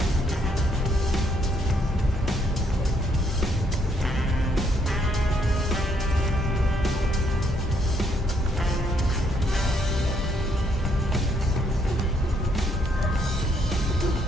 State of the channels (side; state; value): both; normal; correlation 0.71